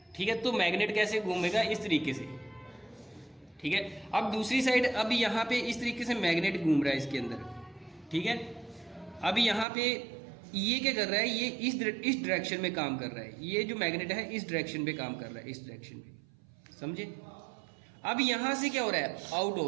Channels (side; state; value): left; drops out; at 9.7 s